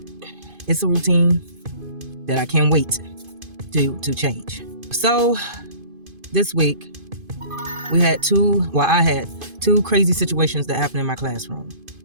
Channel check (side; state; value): left; late; 2.5 ms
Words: it's a routine that I can't wait to change. So, this week, I had two crazy situations that happened in my classroom,